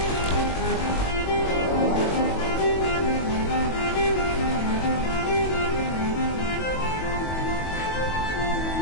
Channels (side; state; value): right; late; 22 ms